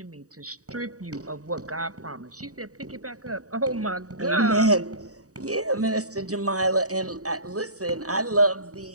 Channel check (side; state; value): left; late; 0.66 ms